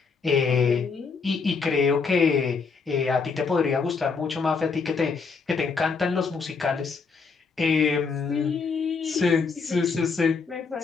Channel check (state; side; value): quieter; right; 5.0 dB